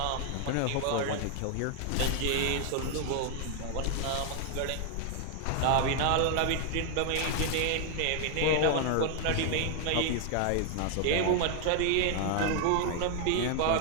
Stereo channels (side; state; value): both; different; correlation 0.00